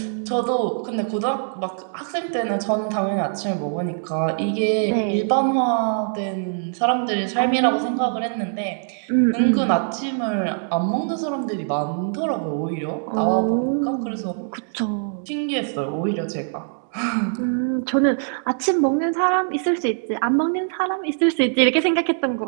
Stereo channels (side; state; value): left; silent; digital silence